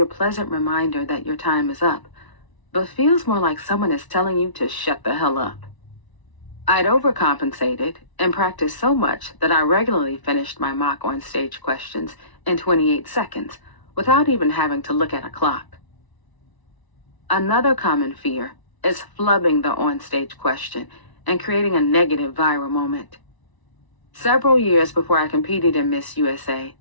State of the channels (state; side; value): late; right; 1.0 ms